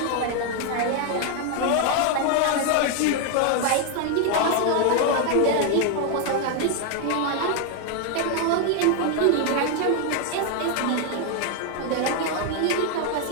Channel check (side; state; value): both; different; correlation 0.01